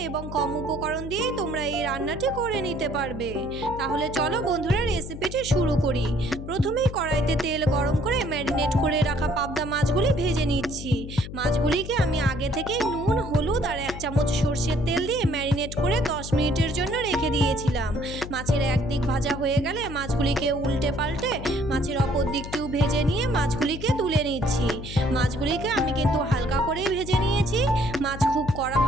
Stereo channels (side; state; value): left; noise; hum, 10 dB below the sound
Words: এবং কম উপকরণ দিয়েই তোমরা এই রান্নাটি করে নিতে পারবে। তাহলে চলো বন্ধুরা, রেসিপিটি শুরু করি। প্রথমেই কড়াইতে তেল গরম করে ম্যারিনেট করে রাখা পাবদা মাছগুলি ভেজে নিচ্ছি। মাছগুলিকে আমি আগে থেকে নুন, হলুদ আর 1 চামচ সর্ষের তেল দিয়ে ম্যারিনেট করে 10 মিনিটের জন্য রেখে দিয়েছিলাম। মাছের একদিক ভাজা হয়ে গেলে মাছগুলিকে উল্টে পাল্টে মাছের অপর দিকটিও ভেজে নিয়ে মাছগুলিকে তুলে নিচ্ছি। মাছগুলিকে আমি কিন্তু হালকা করেই ভেজে নিয়েছি। মাছ খুব কড়া